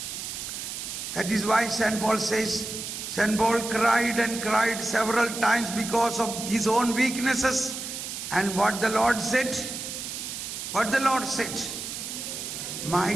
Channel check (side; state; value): right; noise; hiss, 7 dB below the sound